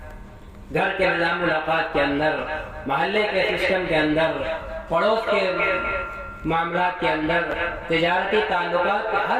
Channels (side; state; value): both; identical; correlation 1.00